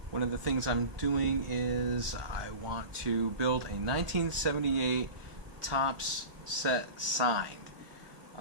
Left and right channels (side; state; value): left; late; 1.4 ms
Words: One of the things I'm doing is I want to build a 1978 Topps set signed.